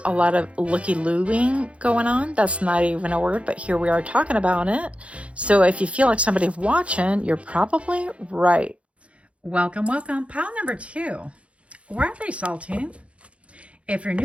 a lot of looky-looing going on. That's not even a word, but here we are talking about it. So if you feel like somebody's watching, you're probably right. Welcome, welcome. Pile number two. Why are they salty? If you're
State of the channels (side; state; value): left; late; 0.062 ms